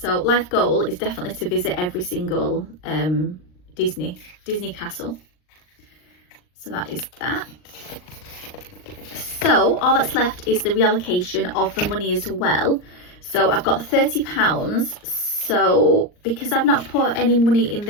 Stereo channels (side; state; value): right; late; 39 ms